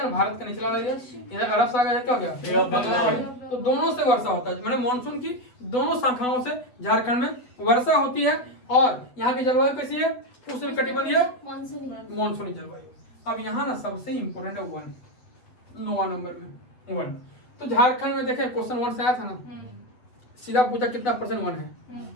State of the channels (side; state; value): right; late; 8.0 ms